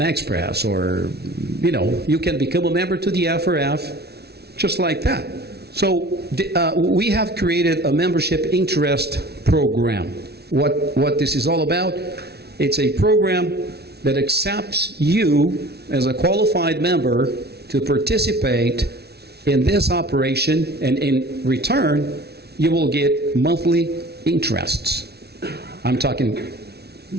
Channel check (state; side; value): late; left; 0.48 ms